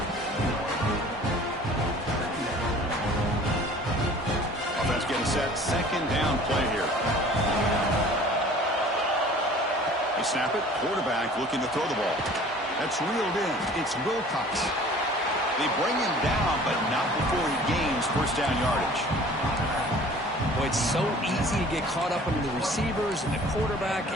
Getting set second down play here. They snap it. Quarterback looking to throw the ball. That's reeled in. It's Wilcox. They bring him down, but not before he gains first down yardage. Boy, it's so easy to get caught up under the receivers and the quarterback,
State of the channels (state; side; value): normal; both; correlation 0.48